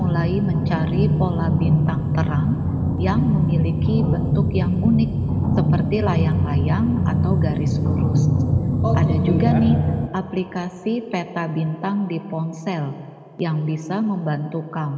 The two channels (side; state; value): both; identical; correlation 1.00